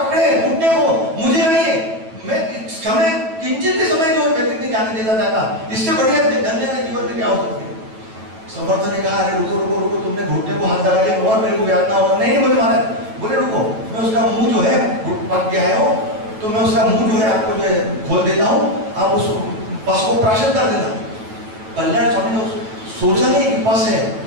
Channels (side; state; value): left; late; 9.2 ms